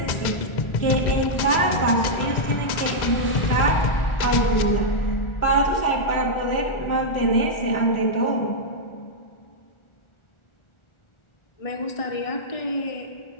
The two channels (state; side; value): late; right; 1.4 ms